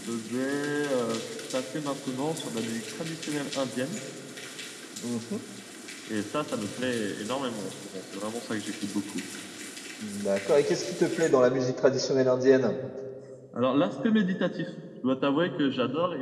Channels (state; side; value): identical; both; correlation 1.00